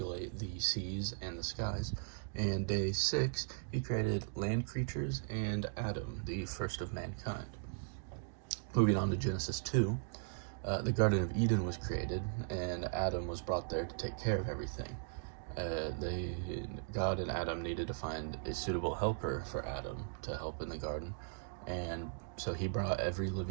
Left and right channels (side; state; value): left; silent; digital silence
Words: the seas and the skies. And day 6, he created land creatures and Adam, the first of mankind. Moving on to Genesis 2, the Garden of Eden was created, and Adam was brought there to take care of everything. God and Adam needed to find a suitable helper for Adam to help in the garden, and so he brought every